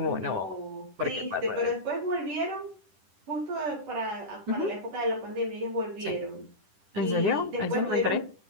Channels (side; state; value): left; late; 10 ms